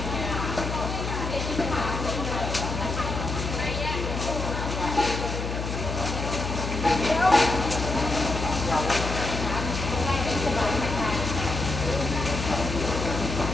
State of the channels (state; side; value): noise; left; hum, 4 dB below the sound